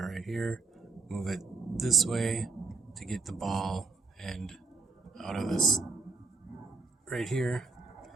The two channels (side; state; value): left; quieter; 4.0 dB